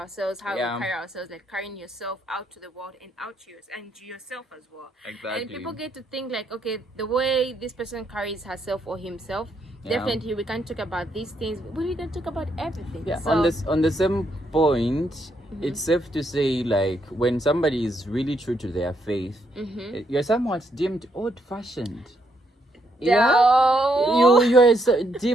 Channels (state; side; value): normal; both; correlation 0.76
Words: like carrying yourself out to the world and out to yourself as well. Exactly. And people get to think like, okay, the way this person carries herself or himself, definitely we can talk about these things, but we can talk about everything. Yeah. So, on the same point, it's safe to say, like, when somebody is really true to their faith, you're somewhat deemed old-fashioned. No. You're